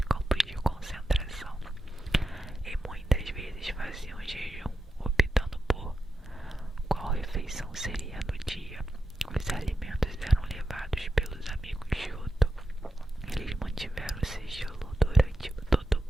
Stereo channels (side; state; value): both; normal; correlation 0.88